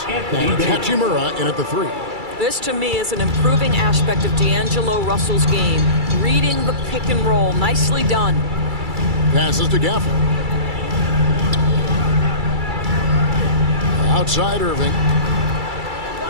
And Hachimura in at the 3. This, to me, is an improving aspect of D'Angelo Russell's game. Reading the pick and roll. Nicely done. Passes to Gafford. Outside Irving.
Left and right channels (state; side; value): late; left; 2.3 ms